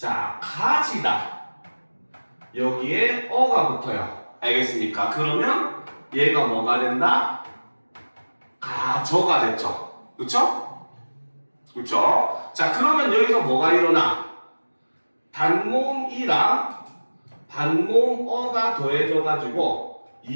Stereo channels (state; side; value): inverted; both; correlation -1.00